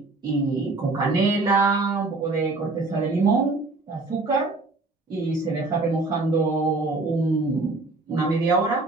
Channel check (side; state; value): left; quieter; 3.4 dB